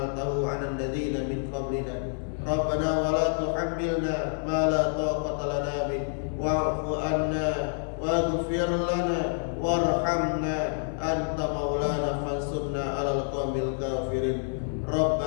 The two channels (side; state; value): right; silent; 59 dB below the other